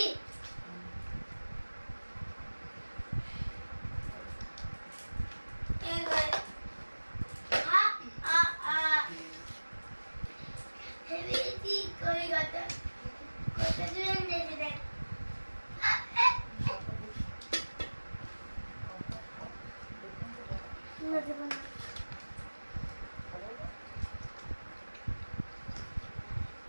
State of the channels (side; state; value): both; inverted; correlation -1.00